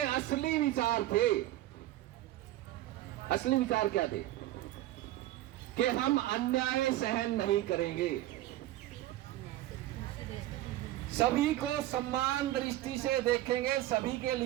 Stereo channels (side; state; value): left; quieter; 15.2 dB